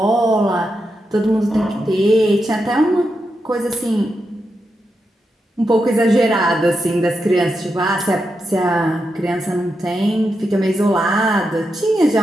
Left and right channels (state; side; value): normal; both; correlation 0.86